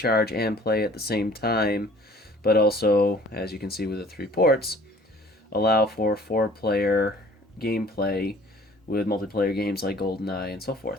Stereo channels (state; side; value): normal; both; correlation 0.52